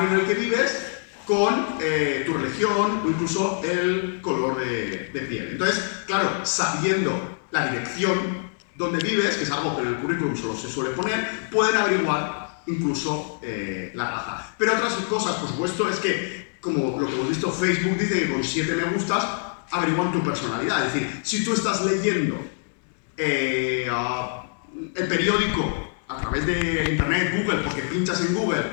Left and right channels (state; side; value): silent; right; digital silence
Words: en el que vives con tu religión o incluso el color de piel. Entonces, claro, sabiendo la dirección donde vives, que es algo que en el currículum solo se suele poner, pueden averiguar incluso la raza. Pero otras cosas, por supuesto, es que, como lo que hemos visto, Facebook dice que con 7 me gustas averiguan tu personalidad. Es decir, si tú estás leyendo el periódico a través de Internet, Google, porque pinchas en Google